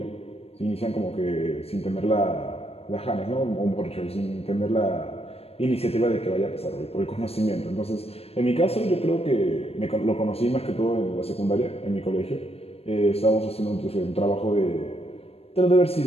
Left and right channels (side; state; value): right; late; 0.29 ms